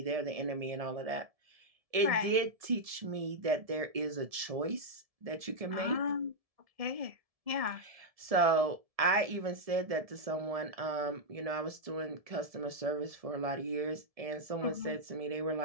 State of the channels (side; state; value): left; late; 1.7 ms